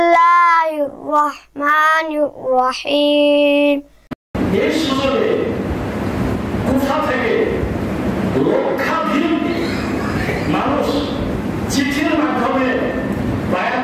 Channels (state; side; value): identical; both; correlation 1.00